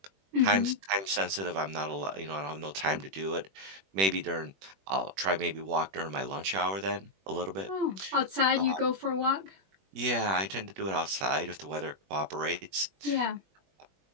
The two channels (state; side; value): late; left; 21 ms